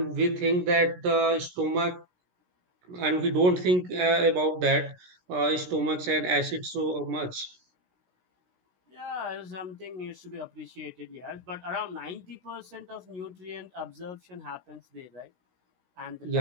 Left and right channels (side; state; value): left; late; 17 ms